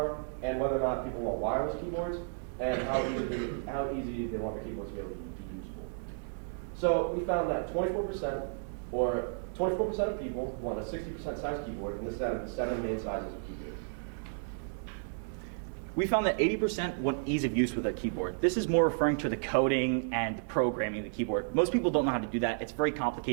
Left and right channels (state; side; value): silent; left; digital silence